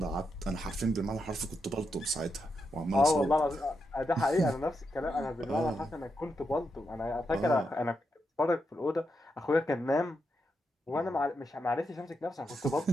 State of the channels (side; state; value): both; normal; correlation 0.84